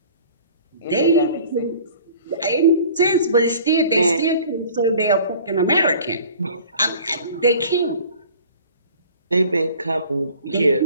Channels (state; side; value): inverted; both; correlation -0.47